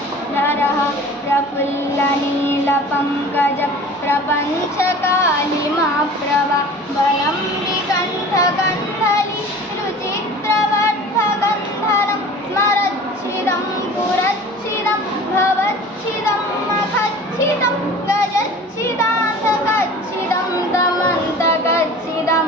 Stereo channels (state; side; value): normal; both; correlation 0.41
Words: प्रफुल्लनीलपङ्कज प्रपञ्चकालिमाप्रभा बलं विकण्ठकण्ठली रुचित्रवर्धकन्धरं स्मरच्छिदं पुरच्छिदं भवच्छिदं मखच्छिदं गजच्छिदान्तकच्छिदं दमन्तकच्छिदं